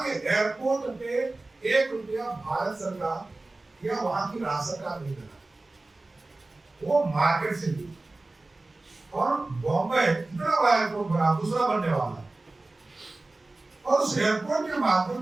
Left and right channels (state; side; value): quieter; left; 3.1 dB